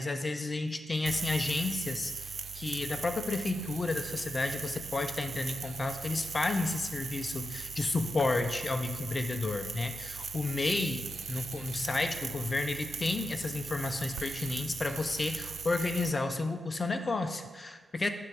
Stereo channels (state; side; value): normal; both; correlation 0.89